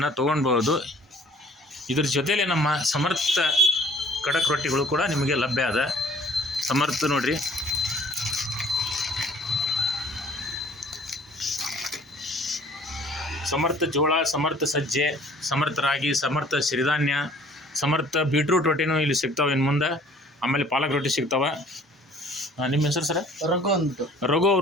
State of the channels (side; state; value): both; normal; correlation 0.54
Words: ತೊಗೊಳ್ಬೋದು. ಇದ್ರ ಜೊತೆಯಲ್ಲೇ ನಮ್ಮ ಸಮರ್ಥ ಕಡಕ್ ರೊಟ್ಟಿಗಳು ಕೂಡ ನಿಮಗೆ ಲಭ್ಯ ಅದ. ಸಮರ್ಥ ನೋಡಿರಿ, ಸಮರ್ಥ ಜೋಳ, ಸಮರ್ಥ ಸಜ್ಜೆ, ಸಮರ್ಥ ರಾಗಿ, ಸಮರ್ಥ ಸಿರಿಧಾನ್ಯ, ಸಮರ್ಥ ಬೀಟ್ರೂಟ್ ರೊಟ್ಟಿನೂ ಇಲ್ಲಿ ಸಿಗ್ತಾವೆ ಇನ್ನು ಮುಂದೆ. ಆಮೇಲೆ ಪಾಲಕ್ ರೊಟ್ಟಿ ಸಿಗ್ತಾವೆ. ನಿಮ್ಮ ಹೆಸರು ಸರ್? ರಘು